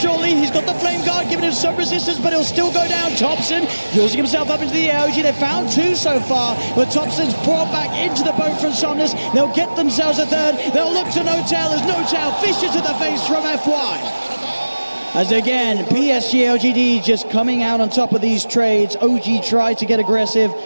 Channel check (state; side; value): inverted; both; correlation -1.00